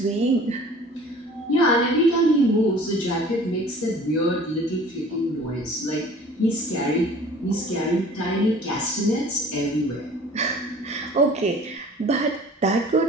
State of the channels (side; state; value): both; normal; correlation 0.47